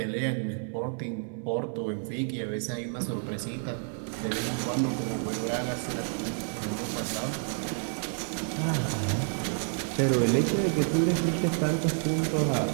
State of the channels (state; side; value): silent; left; 55 dB below the other